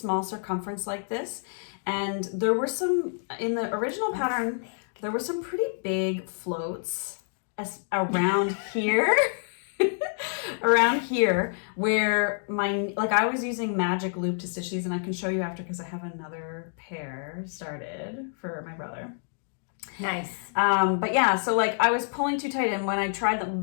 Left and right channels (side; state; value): right; silent; digital silence